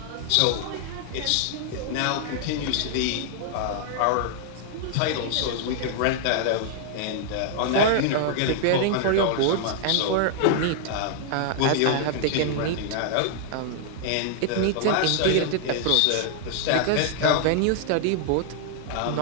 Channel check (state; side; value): different; both; correlation -0.01